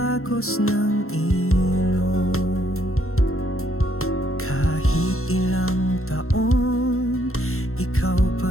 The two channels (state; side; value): late; right; 0.62 ms